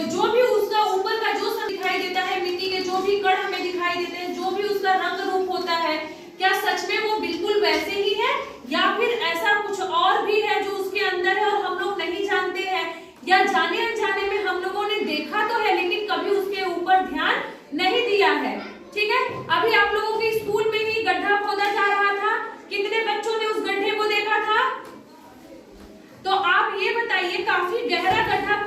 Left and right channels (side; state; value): both; identical; correlation 1.00